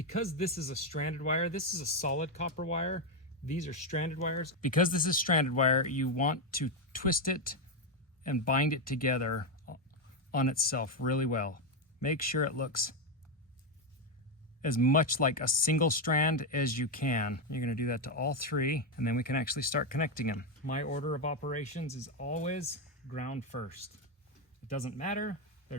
this is a stranded wire, this is a solid copper wire, these are stranded wires. Because this is stranded wire, you want to twist it and bind it together on itself really well. Make sure it looks as much like a single strand as you can. You're going to do that to all three, and then we can actually start connecting them. My order of operations is always ground first. It doesn't matter,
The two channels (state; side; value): normal; both; correlation 0.06